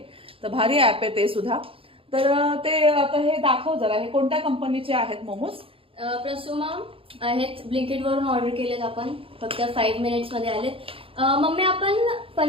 तर भारी ऍप आहे ते सुद्धा. तर ते आता हे दाखव जरा, हे कोणत्या कंपनीचे आहेत मोमोज? प्रसुमा आहेत. ब्लिंकिट वरून ऑर्डर केलेत आपण, फक्त 5 मिनिट्स मध्ये आलेत. मम्मी आपण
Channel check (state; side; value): late; left; 0.27 ms